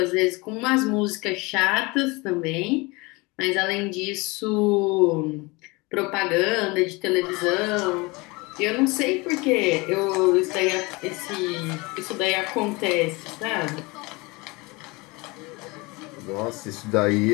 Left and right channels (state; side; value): quieter; right; 25.2 dB